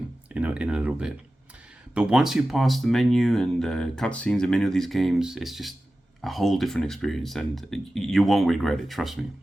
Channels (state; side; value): normal; both; correlation 0.95